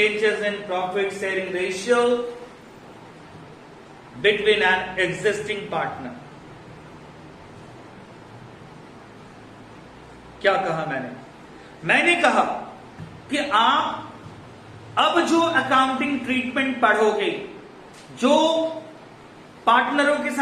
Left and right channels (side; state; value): both; identical; correlation 1.00